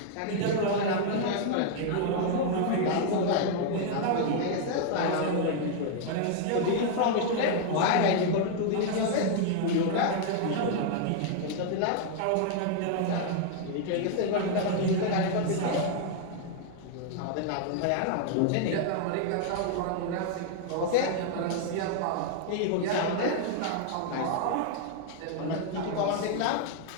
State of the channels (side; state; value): both; different; correlation 0.00